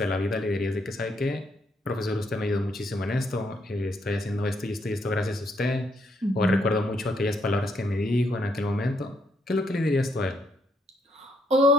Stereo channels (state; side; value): normal; both; correlation 0.73